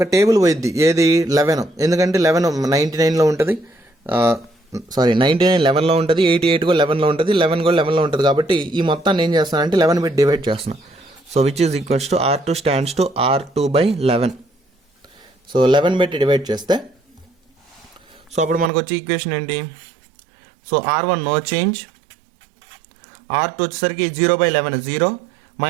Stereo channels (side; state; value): left; drops out; at 18.7 s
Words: టేబుల్ పోయిద్ది, ఏది 11. ఎందుకంటే 11 99లో ఉంటుంది, 99 11లో ఉంటుంది, 88 కూడా 11లో ఉంటుంది, 11 కూడా 11లో ఉంటుంది. కాబట్టి ఈ మొత్తాన్ని ఏం చేస్తానంటే 11 పెట్టి డివైడ్ చేస్తున్నాం. So which is equals to R2 stands to R2/11. So 11 పెట్టి డివైడ్ చేస్తే సో అప్పుడు మనకు వచ్చే ఈక్వేషన్ ఏంటి, so R1 no change, R2 వచ్చేసరికి 0/11 0,